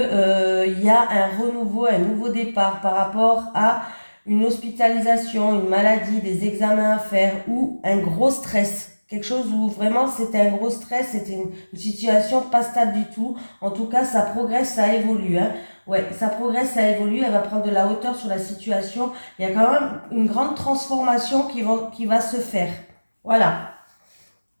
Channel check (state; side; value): inverted; both; correlation -1.00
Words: il y a un renouveau, un nouveau départ par rapport à une hospitalisation, une maladie, des examens à faire ou un gros stress. Quelque chose où vraiment c'était un gros stress, c'était une situation pas stable du tout. En tout cas, ça progresse, ça évolue, hein. Ouais, ça progresse, ça évolue, elle va prendre de la hauteur sur la situation. Il y a quand même une grande transformation qui va se faire. Voilà.